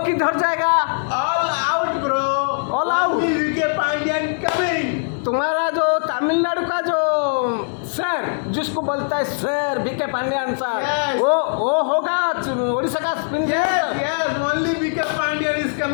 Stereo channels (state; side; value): silent; right; digital silence